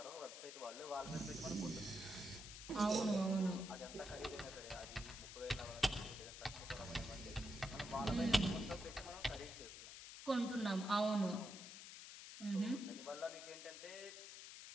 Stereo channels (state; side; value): noise; left; hiss, 11 dB below the sound